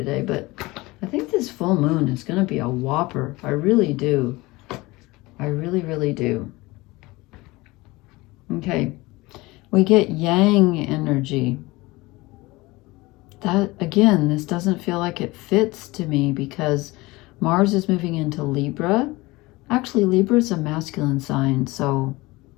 but I think this full moon is going to be a whopper. I really do. I really, really do. Okay. We get Yang energy. That, again, this doesn't feel like it fits to me, because Mars is moving into Libra. Actually, Libra is a masculine sign, so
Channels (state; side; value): quieter; right; 21.6 dB